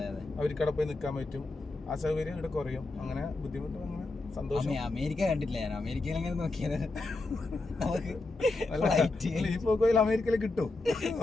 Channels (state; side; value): quieter; right; 3.2 dB